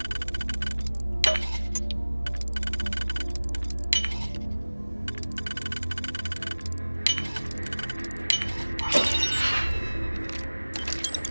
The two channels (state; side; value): inverted; both; correlation -1.00